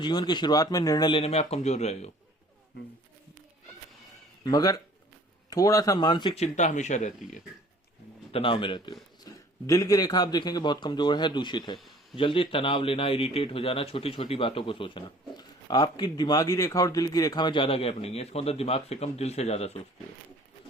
जीवन की शुरुआत में निर्णय लेने में आप कमजोर रहे हो, मगर थोड़ा सा मानसिक चिंता हमेशा रहती है, तनाव में रहते हो। दिल की रेखा आप देखेंगे बहुत कमजोर है, दूषित है, जल्दी तनाव लेना, इरिटेट हो जाना, छोटी छोटी बातों को सोचना। आपकी दिमागी रेखा और दिल की रेखा में ज्यादा गैप नहीं है, इसका मतलब दिमाग से कम दिल से ज्यादा सोचते हो,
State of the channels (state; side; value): normal; both; correlation 0.52